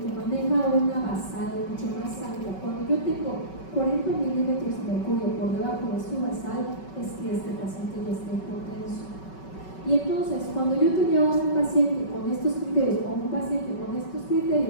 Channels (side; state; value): right; late; 5.3 ms